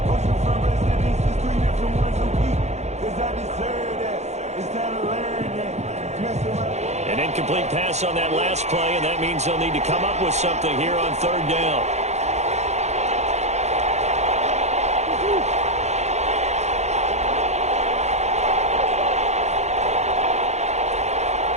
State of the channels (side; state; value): left; late; 0.33 ms